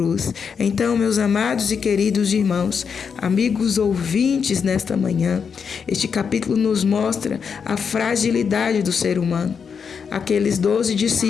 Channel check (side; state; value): right; quieter; 6.4 dB